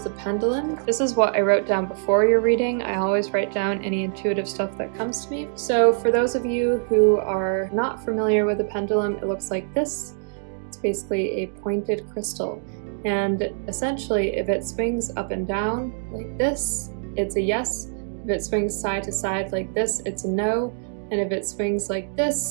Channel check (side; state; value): left; silent; digital silence